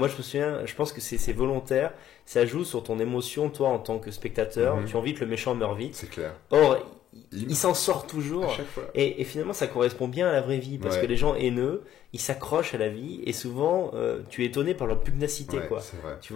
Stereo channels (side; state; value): right; quieter; 11.3 dB